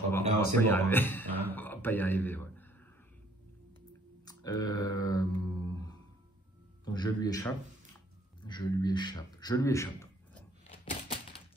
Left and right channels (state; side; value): normal; both; correlation 0.61